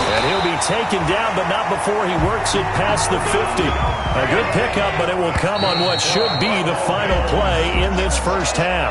And he'll be taken down, but not before he works it past the 50. A good pickup, but it will come on what should be the final play in this first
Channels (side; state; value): both; identical; correlation 1.00